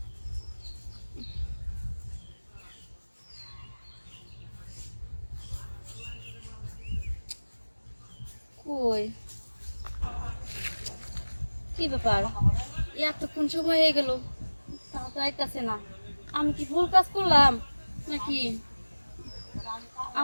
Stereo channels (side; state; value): both; inverted; correlation -1.00